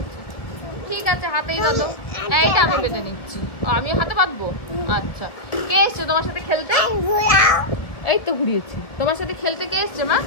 ঠিক আছে হাতেই বাঁধো, এইটা আমি বেঁধে নিচ্ছি। আমি হাতে বাঁধবো? আচ্ছা। কে এসছে তোমার সাথে খেলতে? এই তো ঘুরিয়েছি। তোমার সাথে খেলতে কে এসছে মা?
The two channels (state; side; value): late; right; 1.7 ms